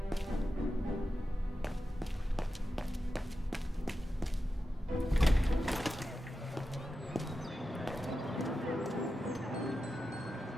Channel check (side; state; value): both; normal; correlation 0.91